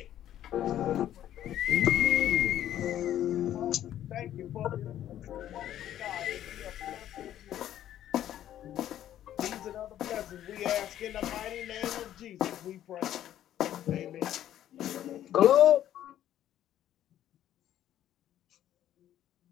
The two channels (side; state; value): right; quieter; 11.7 dB